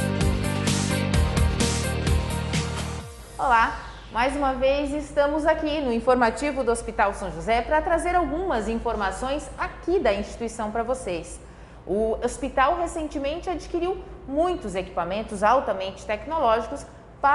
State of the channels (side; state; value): both; identical; correlation 1.00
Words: Olá! Mais uma vez estamos aqui no informativo do Hospital São José para trazer algumas informações aqui da instituição para vocês. O hospital recentemente adquiriu muitos equipamentos altamente tecnológicos